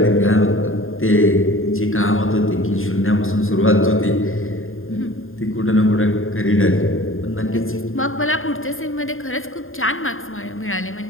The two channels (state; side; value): late; right; 0.60 ms